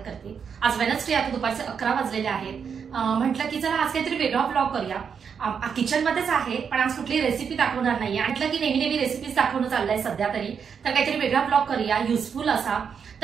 करते। आज वेडनेसडे आता दुपारचे 11 वाजलेले आहेत। म्हटलं की चला आज काहीतरी वेगळा ब्लॉग करूया। किचन मध्येच आहे पण आज कुठली रेसिपी दाखवणार नाही। म्हटलं की नेहमी रेसिपीज दाखवणं चाललंय सध्या तरी, तर काहीतरी वेगळा ब्लॉग करूया युजफुल असा।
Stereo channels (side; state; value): left; quieter; 6.8 dB